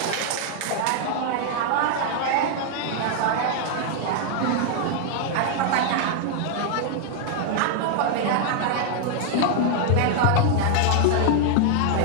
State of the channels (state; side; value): different; both; correlation 0.00